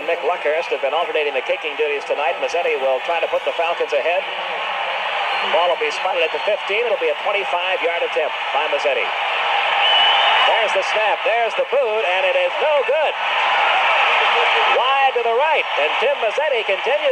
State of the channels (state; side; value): identical; both; correlation 1.00